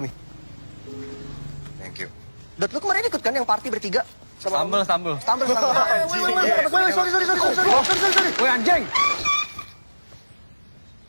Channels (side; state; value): both; inverted; correlation -1.00